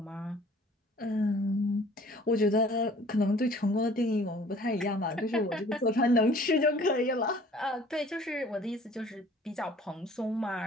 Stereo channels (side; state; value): both; normal; correlation 0.52